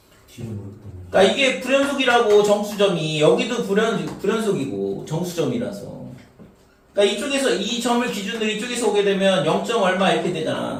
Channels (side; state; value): both; identical; correlation 1.00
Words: 뒤를 모르겠다. 그러니까 이게 불연속이라고 정수점이 여기도 불연속이고 정수점이라서 그러니까 이쪽에서 이 점을 기준으로 이쪽에서 오게 되면 0. 얼마 이렇게